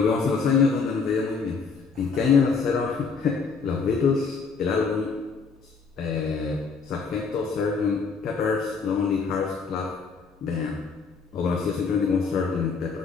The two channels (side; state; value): right; quieter; 5.1 dB